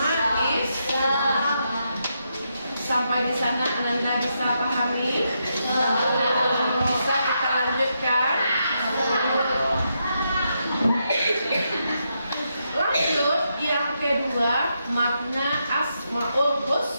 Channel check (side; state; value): both; inverted; correlation -0.82